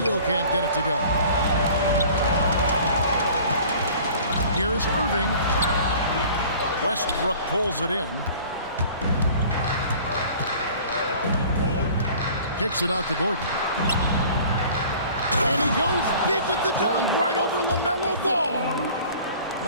can't get it to go. Here's Irving. Westbrook pulls it in. Kicks it out to Gordon. And he goes big with the dunk right over LaMelo Ball.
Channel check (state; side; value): inverted; both; correlation -0.47